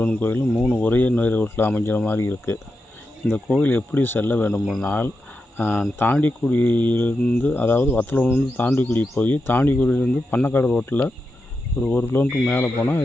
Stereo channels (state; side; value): normal; both; correlation 0.88